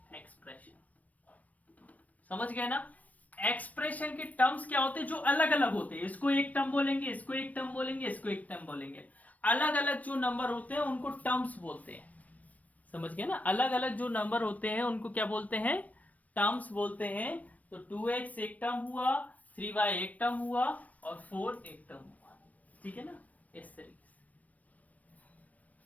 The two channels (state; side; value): late; right; 0.071 ms